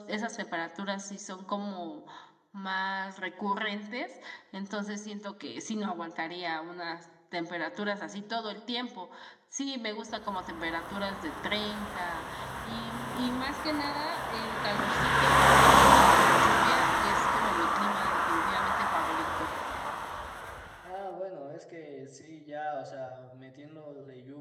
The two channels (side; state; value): both; identical; correlation 1.00